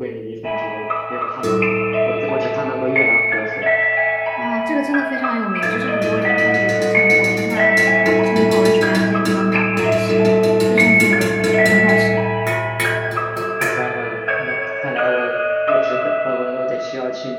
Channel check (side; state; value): both; identical; correlation 1.00